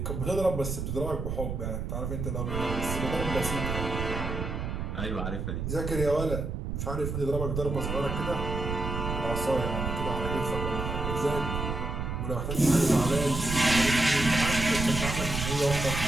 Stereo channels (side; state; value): right; noise; rumble, 3 dB below the sound